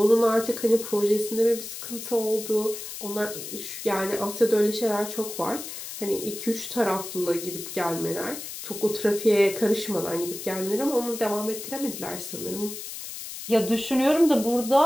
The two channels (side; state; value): left; noise; hiss, 9 dB below the sound